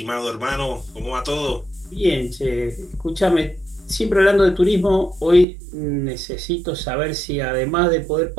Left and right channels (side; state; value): left; drops out; at 5.5 s